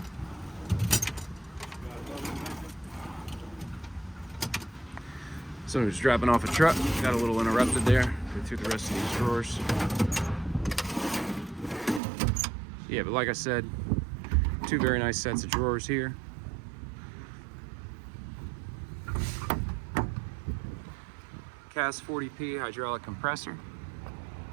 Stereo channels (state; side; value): drops out; left; at 12.0 s